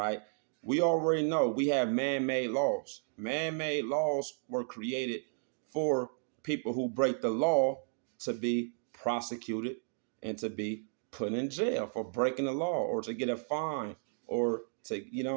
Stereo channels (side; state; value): left; silent; digital silence